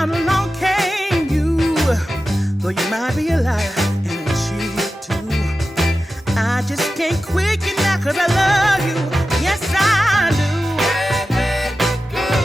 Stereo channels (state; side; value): normal; both; correlation 0.93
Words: along came you. Though you might be a liar and a cheat too, I just can't quit you now, 'cause I love you. Yes, I do.